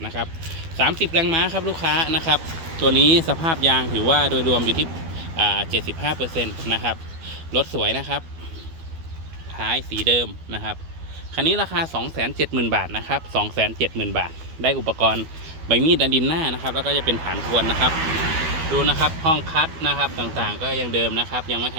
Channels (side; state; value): left; late; 12 ms